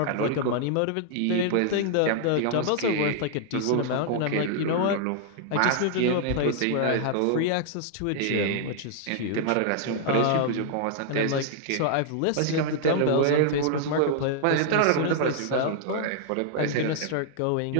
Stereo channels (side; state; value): both; different; correlation -0.01